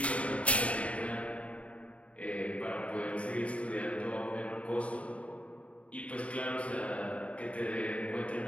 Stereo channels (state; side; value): late; right; 0.064 ms